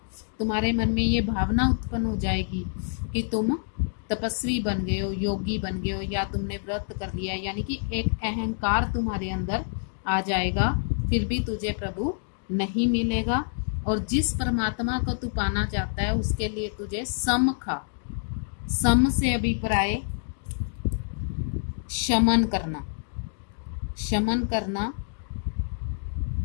तुम्हारे मन में ये भावना उत्पन्न हो जाएगी कि तुम तपस्वी बन गए हो, योगी बन गए हो, या तुमने व्रत कर लिया, यानी कि एक अहंकार तुम्हारे अंदर आ जाएगा। फिर भी तुझे प्रभु नहीं मिलेगा, और जिस परमात्मा को तू पाना चाहता है उसके लिए तुझे सम खा। सम से अभिप्राय शमन करना। शमन करना,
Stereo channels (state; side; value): silent; right; digital silence